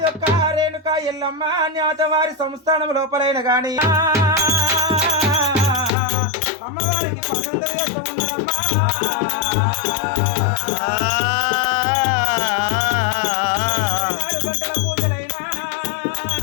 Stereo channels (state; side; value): drops out; right; at 5.9 s